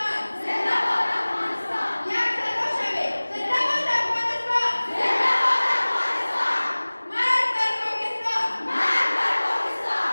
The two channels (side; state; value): both; inverted; correlation -1.00